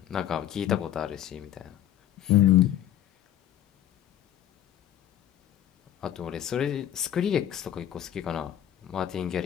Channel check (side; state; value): right; quieter; 11.3 dB